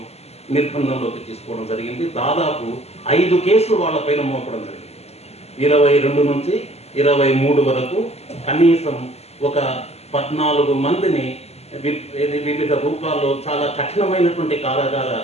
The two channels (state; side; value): late; right; 0.30 ms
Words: నిర్బంధంలోకి తీసుకోవడం జరిగింది. దాదాపు 5 కేసులు వాళ్ళపైన మోపడం జరిగింది. 22 నుంచి 23 వరకు కనీసం ఒక 14 మందిని వివిధ రూపాల్లో చాలా కఠినమైనటువంటి కారాగార